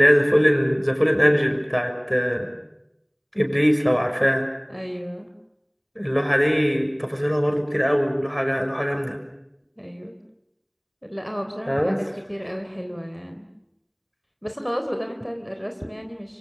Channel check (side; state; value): both; identical; correlation 1.00